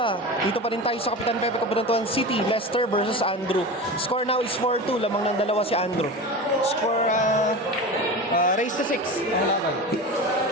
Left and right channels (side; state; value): both; normal; correlation 0.29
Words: Dito pa rin tayo sa Kapitan Pepe Cabanatuan City, Leicester versus Andrew. Score now is 4-2, lamang ng dalawa si Andrew. Score raise to 6 ang laban.